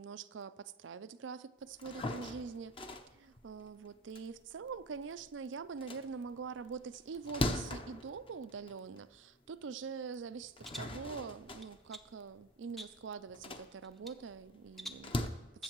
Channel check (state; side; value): normal; both; correlation 0.37